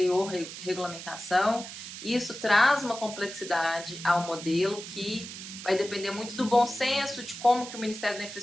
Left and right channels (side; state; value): right; noise; hiss, 11 dB below the sound